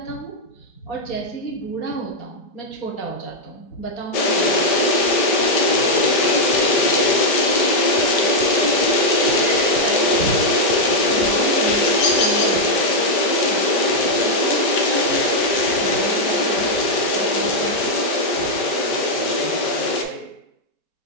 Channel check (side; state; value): right; late; 5.0 ms